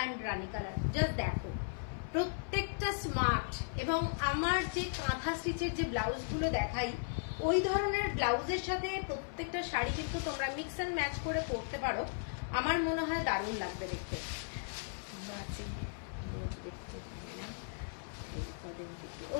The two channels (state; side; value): silent; right; 53 dB below the other